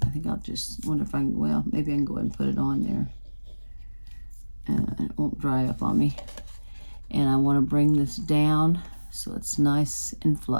I think I'll just wonder if I can, well, maybe I can go ahead and put it on there. And it won't dry up on me. And I want to bring this down so it's nice and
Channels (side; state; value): both; inverted; correlation -1.00